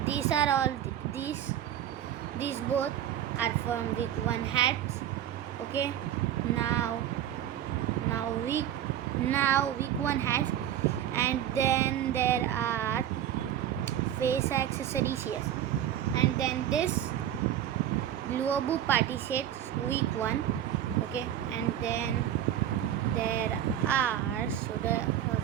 These are all these both are from week 1 hats. Okay, now week 1 hats, and then there are face accessories here, and then this Luobu party sets week 1. Okay, and then there are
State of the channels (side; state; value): left; quieter; 11.0 dB